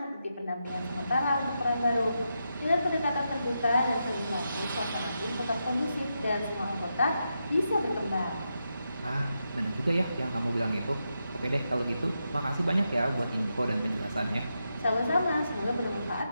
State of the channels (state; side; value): inverted; both; correlation -0.86